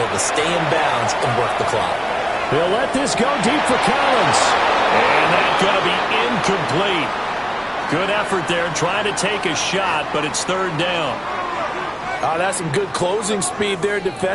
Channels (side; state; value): both; identical; correlation 1.00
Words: to stay in bounds and work the clock. They'll let this go deep for Collins. And that's going to be incomplete. Good effort there, trying to take a shot, but it's third down. Oh, that's some good closing speed there